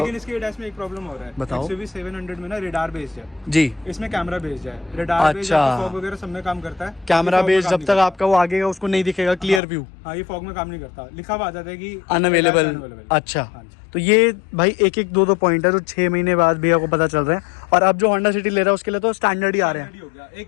इसके एडास में एक प्रॉब्लम हो रहा है। बताओ। XUV 700 में ना रेडार बेस्ड है जी। इसमें कैमरा बेस्ड है। रेडार बेस्ड अच्छा। फॉग वगैरह सब में काम करता है। कैमरा ये fog में बेस काम जब नहीं तक करता। आपका वो आगेगा उसको नहीं दिखेगा क्लियर व्यू, हाँ ये फॉग में काम नहीं करता, लिखा हुआ आ जाता है कि अनअवेलेबल। unavailable। अच्छा, हाँ जी। तो ये भाई एक एक दो पॉइंट है जो 6 महीने बाद भैया को पता चल रहे हैं। और अब जो होंडा सिटी ले रहा है उसके लिए तो स्टैंडर्ड ही आ रहे हैं। Standard ही हो गया। एक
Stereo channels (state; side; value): drops out; right; at 9.6 s